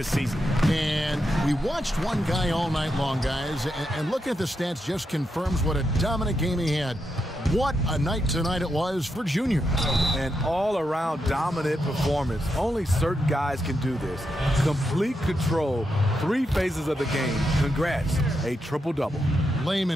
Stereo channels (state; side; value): normal; both; correlation 0.84